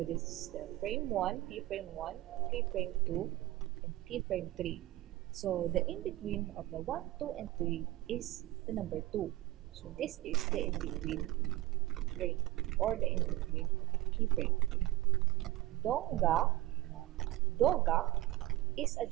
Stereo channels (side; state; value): left; quieter; 17.2 dB